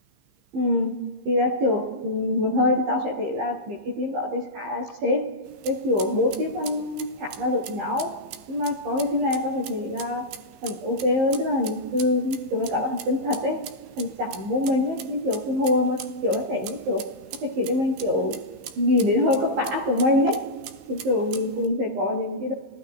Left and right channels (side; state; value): left; late; 15 ms